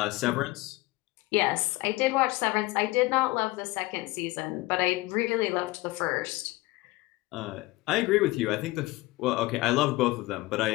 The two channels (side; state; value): right; quieter; 20.4 dB